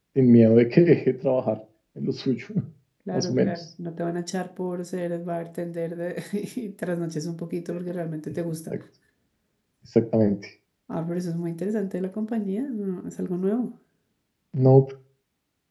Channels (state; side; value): identical; both; correlation 1.00